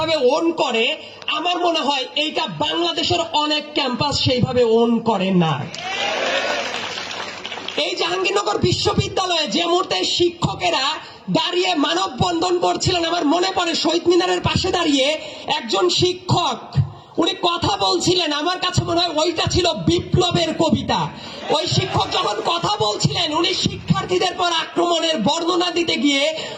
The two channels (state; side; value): identical; both; correlation 1.00